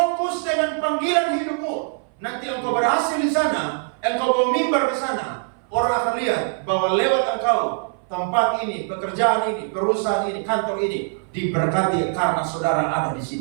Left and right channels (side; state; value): left; silent; 59 dB below the other